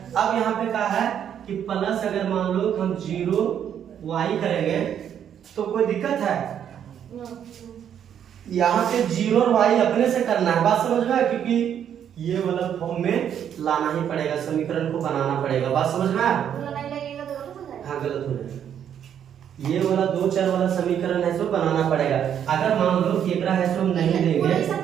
अब यहाँ पे क्या है कि प्लस अगर मान लो हम 0 y करेंगे तो कोई दिक्कत है? यहाँ पे 0 और y अपने से करना है। बात समझ में? क्योंकि ये वाला फॉर्म में लाना ही पड़ेगा, समीकरण को बनाना पड़ेगा। बात समझ में? हाँ गलत हो जाएगा। ये वाला दो चर वाला समीकरण है सो बनाना पड़ेगा। अगर मान लो कि एकरा है सो हम नहीं देंगे,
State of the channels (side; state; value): left; quieter; 9.1 dB